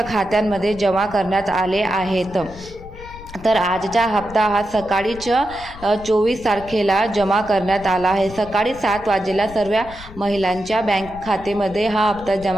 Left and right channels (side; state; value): left; noise; rumble, 17 dB below the sound